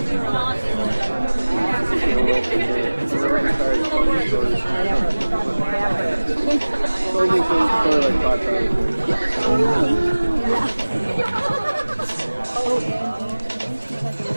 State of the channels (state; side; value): inverted; both; correlation -1.00